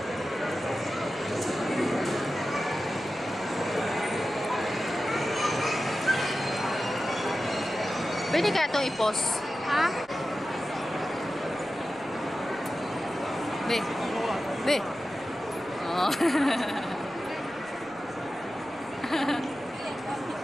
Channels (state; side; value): noise; right; rumble, 29 dB below the sound